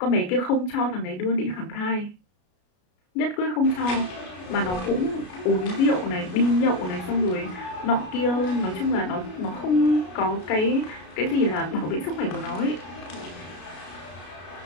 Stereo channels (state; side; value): late; right; 33 ms